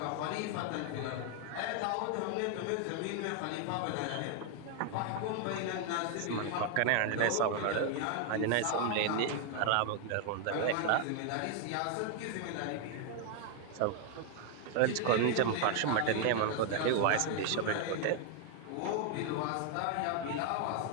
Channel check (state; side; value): different; both; correlation 0.00